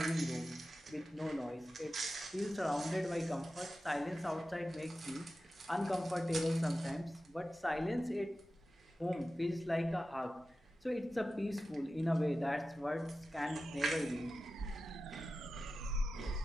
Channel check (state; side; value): normal; both; correlation 0.94